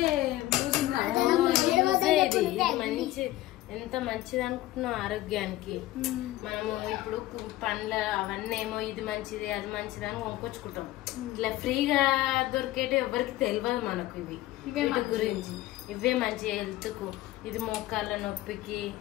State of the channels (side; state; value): right; quieter; 16.3 dB